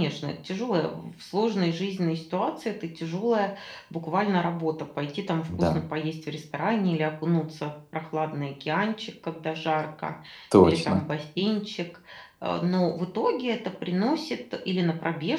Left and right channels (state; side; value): identical; both; correlation 1.00